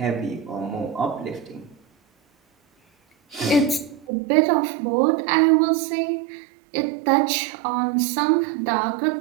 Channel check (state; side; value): drops out; left; at 4.0 s